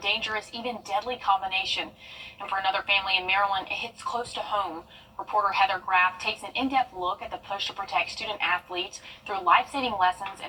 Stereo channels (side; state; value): both; identical; correlation 1.00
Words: even deadly combination. And for another family in Maryland, it hits close to home. Reporter Heather Graff takes an in-depth look at the push to protect student athletes through life-saving lessons